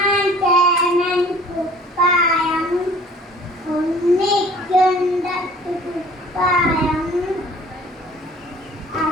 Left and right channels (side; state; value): both; normal; correlation 0.51